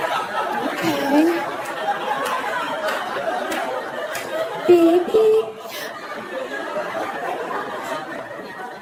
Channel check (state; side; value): identical; both; correlation 1.00